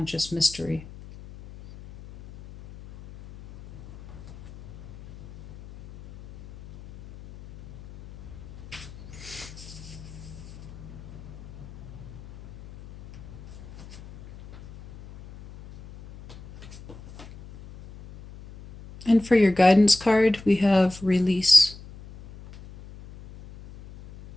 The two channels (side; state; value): left; noise; hum, 18 dB below the sound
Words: mystery. And for your guidance card, we have Release.